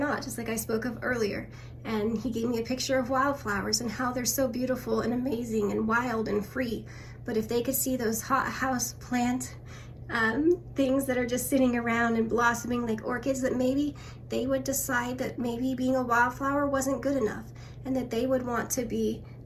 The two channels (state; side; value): identical; both; correlation 1.00